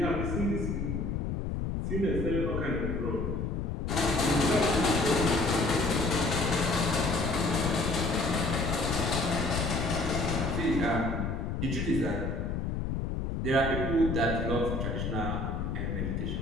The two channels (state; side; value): noise; left; rumble, 1 dB below the sound